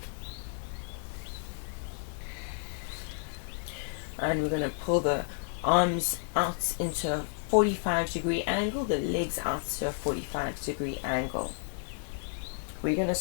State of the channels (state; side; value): silent; right; digital silence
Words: And we're going to pull the arms out into a 45-degree angle, the legs out to a 45-degree angle. We're going to